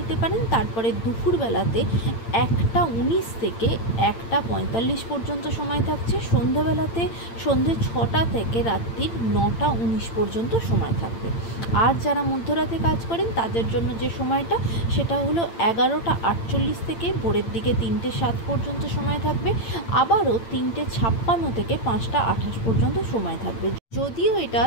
পারেন। তারপরে দুপুরবেলাতে 1টা 19 থেকে 1টা 45 পর্যন্ত সময় থাকছে। সন্ধ্যাবেলাতে সন্ধ্যে 6টা থেকে রাত্রির 9টা 19 পর্যন্ত সময় থাকবে। আর যারা মধ্যরাতে কাজ করেন তাদের জন্য যে সময়টা, সেটা হলো 11টা 48 থেকে ভোরের দিকে 3টে 7 পর্যন্ত সময় থাকবে। আবারও 3টে 56 থেকে 5টা 28 পর্যন্ত সময় থাকবে, যদিও এটা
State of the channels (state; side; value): late; right; 8.8 ms